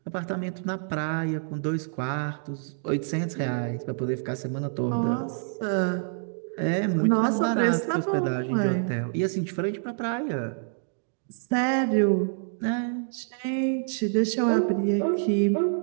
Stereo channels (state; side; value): silent; left; digital silence